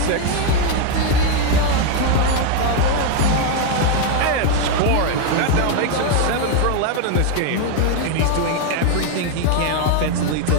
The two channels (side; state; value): both; different; correlation 0.01